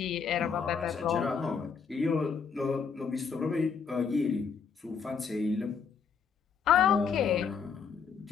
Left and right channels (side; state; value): right; quieter; 6.1 dB